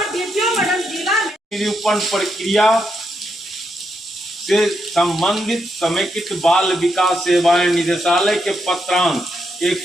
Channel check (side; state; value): both; normal; correlation 0.81